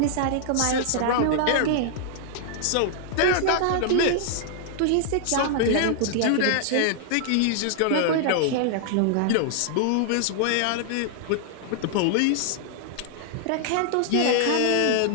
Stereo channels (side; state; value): both; different; correlation -0.01